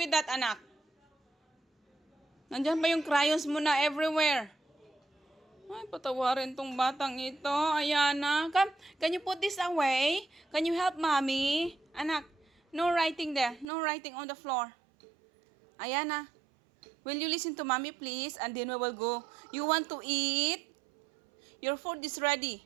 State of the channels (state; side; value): drops out; left; at 13.7 s